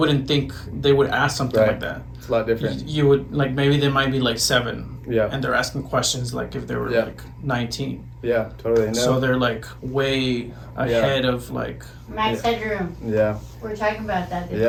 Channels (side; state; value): both; identical; correlation 1.00